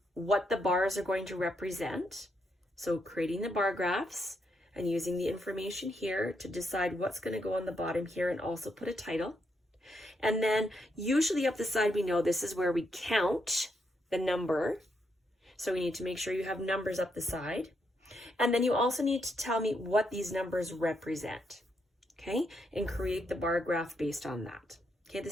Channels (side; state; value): both; normal; correlation 0.79